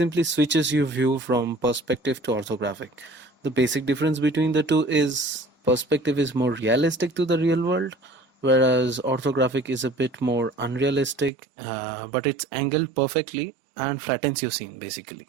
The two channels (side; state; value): left; drops out; at 11.3 s